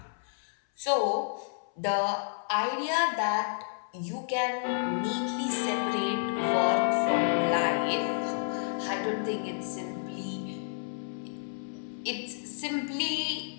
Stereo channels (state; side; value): silent; right; 57 dB below the other